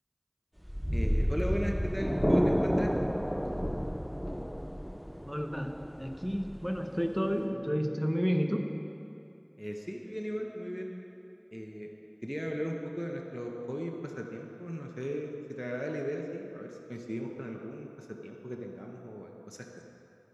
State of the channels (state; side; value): identical; both; correlation 1.00